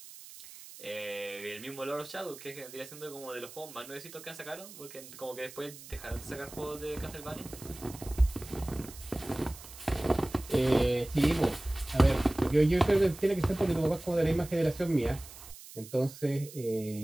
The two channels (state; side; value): noise; right; hiss, 16 dB below the sound